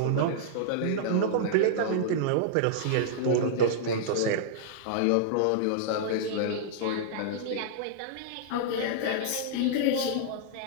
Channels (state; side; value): different; both; correlation -0.02